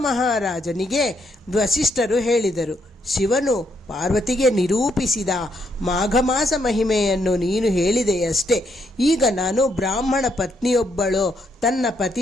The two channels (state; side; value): normal; both; correlation 0.76